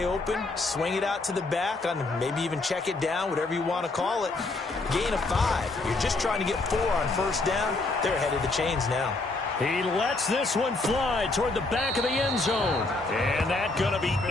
open. Swing it out to the back, on maybe even check it down, whatever you want to call it. Gain of 5. You're just trying to get 4 on first down. They're ahead of the chains now. He lets this one fly toward the back of the end zone. And that's going to be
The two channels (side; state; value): right; quieter; 3.2 dB